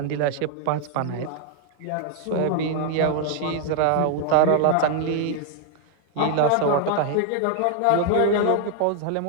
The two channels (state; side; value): different; both; correlation 0.00